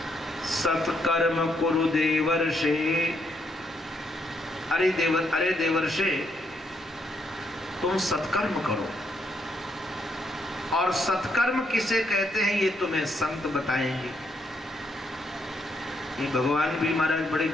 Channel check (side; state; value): both; normal; correlation 0.75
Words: सत्कर्म कुरु देवर्षे। अरे देवर्षे, तुम सत्कर्म करो। और सत्कर्म किसे कहते हैं ये तुम्हें संत बताएंगे। ये भगवान भी महाराज बड़े